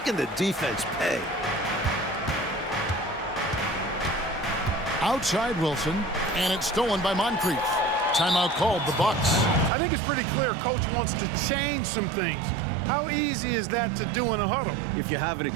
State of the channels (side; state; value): left; drops out; at 9.7 s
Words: the defense pay. Outside Wilson, and it's stolen by Moncrief. Timeout called, the Bucks. I think it's pretty clear Coach wants to change some things. How easy is that to do in a huddle? If you have an